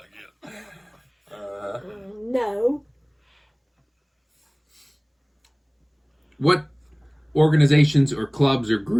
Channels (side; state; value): both; identical; correlation 1.00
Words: get. No. What organizations or clubs or